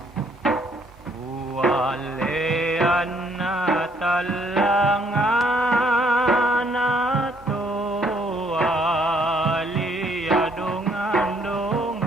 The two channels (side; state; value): both; normal; correlation 0.67